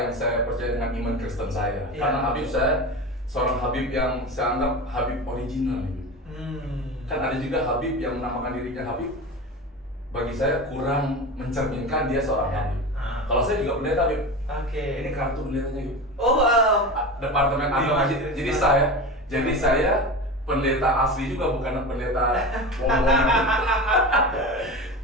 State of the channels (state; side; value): normal; both; correlation 0.27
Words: saya percaya dengan iman Kristen saya. Iya. Karena Habib saya seorang Habib yang saya anggap Habib original. Kan ada juga Habib yang menamakan dirinya Habib. Bagi saya kurang mencerminkan dia seorang Habib. Kalau saya juga pendeta, Habib. Oke. Ini kartu pendetanya, Habib. Oh, Departemen agama. Jadi saya pendeta asli juga, bukan pendeta wong-wongan.